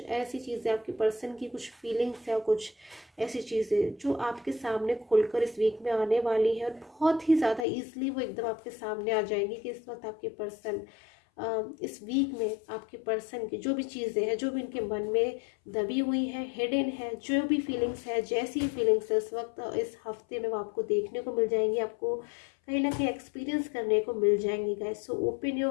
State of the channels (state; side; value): drops out; right; at 7.7 s